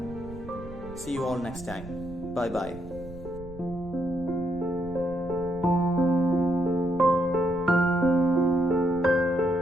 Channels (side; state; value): right; noise; rumble, 15 dB below the sound